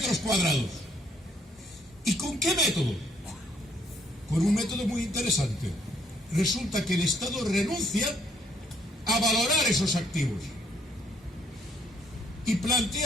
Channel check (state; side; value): normal; both; correlation 0.67